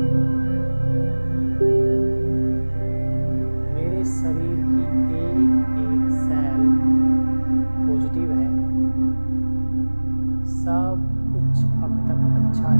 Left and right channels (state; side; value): inverted; both; correlation -1.00